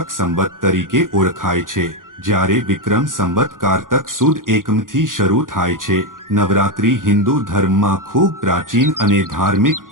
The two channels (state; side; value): late; left; 0.90 ms